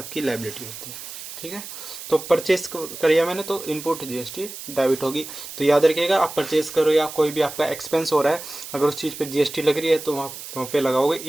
लायबिलिटी होती है, ठीक है। तो परचेज करिए मैंने तो इनपुट GST डेबिट होगी। तो याद रखिएगा आप परचेज करो या कोई भी आपका एक्सपेंस हो रहा है, अगर उस चीज़ पे GST लग रही है तो वहाँ पे लगाओगे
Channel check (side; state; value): right; noise; hiss, 11 dB below the sound